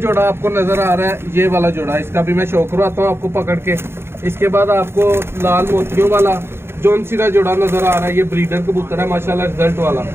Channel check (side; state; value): left; late; 0.12 ms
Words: आपको नजर आ रहा है, ये वाला जोड़ा, इसका भी मैं शो करवाता हूँ आपको पकड़ के। इसके बाद आपको लाल मोतियों वाला जौन सिरा जोड़ा नजर आ रहा है, ये ब्रीडर कबूतर है माशाल्लाह, रिजल्ट वाला,